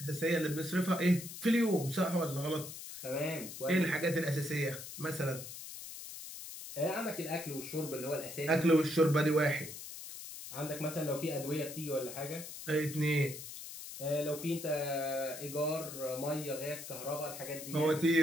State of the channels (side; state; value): left; noise; hiss, 11 dB below the sound